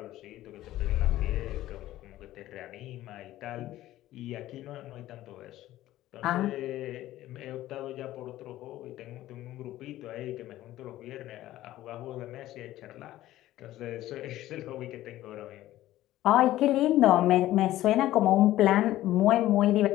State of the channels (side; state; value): right; quieter; 14.8 dB